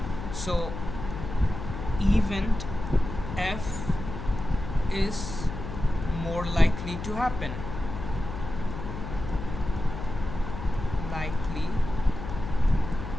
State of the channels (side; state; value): left; noise; hum, 8 dB below the sound